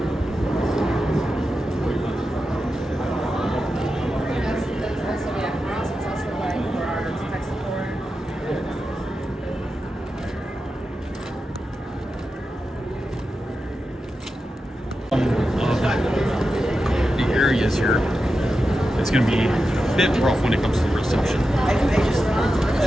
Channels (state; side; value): normal; both; correlation 0.90